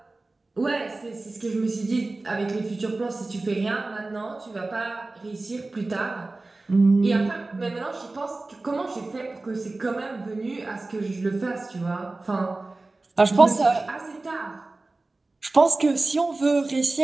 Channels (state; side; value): quieter; left; 3.2 dB